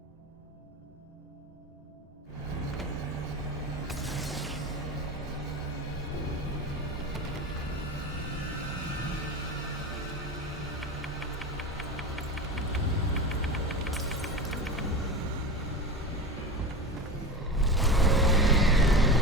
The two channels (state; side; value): normal; both; correlation 0.26